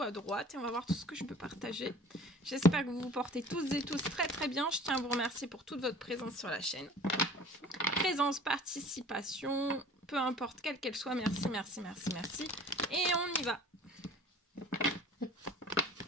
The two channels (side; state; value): both; normal; correlation 0.47